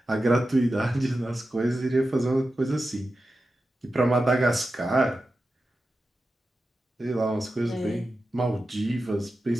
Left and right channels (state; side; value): normal; both; correlation 0.92